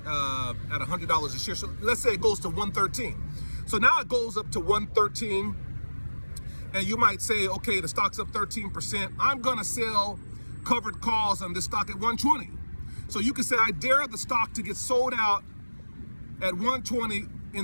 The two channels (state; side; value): inverted; both; correlation -1.00